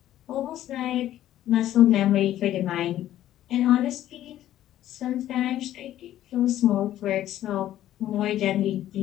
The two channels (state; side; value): quieter; right; 12.8 dB